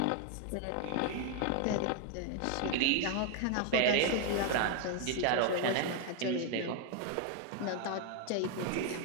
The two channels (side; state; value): both; different; correlation 0.01